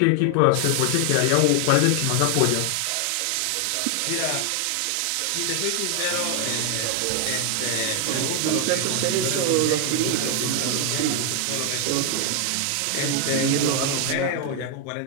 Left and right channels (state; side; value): different; both; correlation 0.00